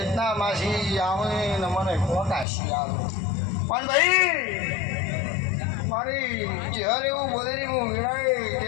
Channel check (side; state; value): right; drops out; at 2.5 s